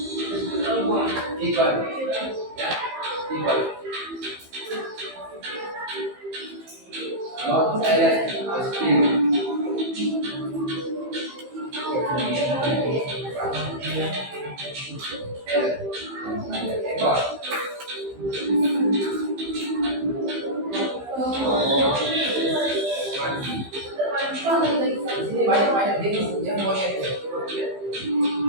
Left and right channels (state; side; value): late; left; 15 ms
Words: equal, ya, equal. Not silent, speak. Di sini banyak jenis yang monyet.